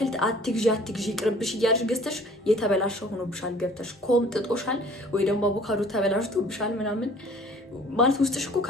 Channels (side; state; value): both; normal; correlation 0.51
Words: አትግዢ ቅርብሽ እያልሽ ገዝተሽ የተበላሸ ሆኖብሻል፣ ገብተሽ ኮምጥጦሻል፣ ወይ ደግሞ አቮካዶ ተበላሽቶብሻል ምናምን ማለት ውስጥሽ እኮ